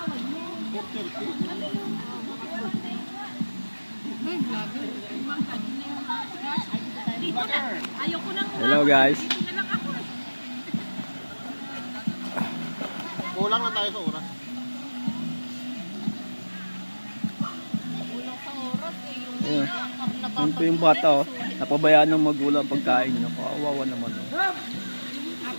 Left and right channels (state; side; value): inverted; both; correlation -1.00